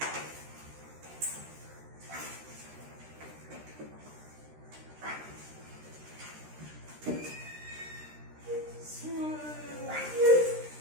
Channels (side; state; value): left; late; 13 ms